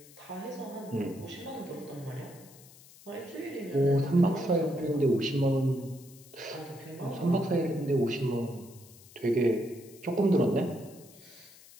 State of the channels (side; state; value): left; noise; hiss, 22 dB below the sound